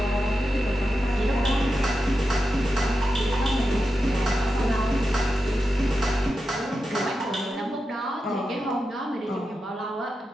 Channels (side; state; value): both; normal; correlation 0.89